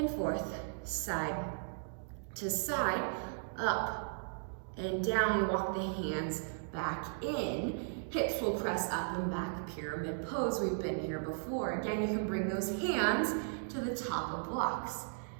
forth, side to side, up and down. Walk the hands back in. Hips will press up and back, pyramid pose. We've been here before. Again, you can bring those hands to the top of blocks.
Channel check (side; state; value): left; silent; digital silence